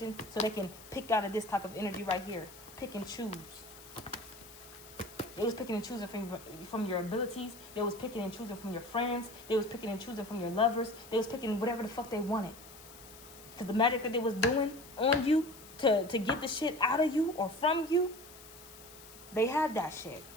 so they can pick out of this type of energy right here. Pick and choose. They was picking and choosing from your abilities. They was picking and choosing from your friends. They was picking and choosing from your lovers. They was picking whatever the fuck they wanted. Because the magic that they was doing on you to get the shit out of you or from you, they had that shit.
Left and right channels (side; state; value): left; noise; hiss, 18 dB below the sound